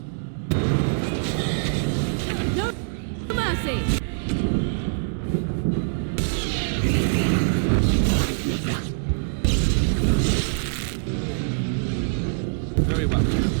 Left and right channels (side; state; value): left; silent; digital silence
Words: No mercy. Very well.